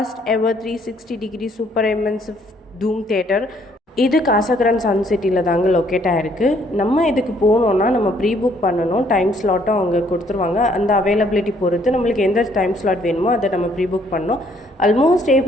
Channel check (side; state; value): both; normal; correlation 0.65